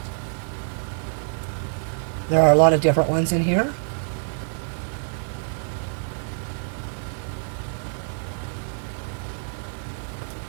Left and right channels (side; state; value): left; silent; 61 dB below the other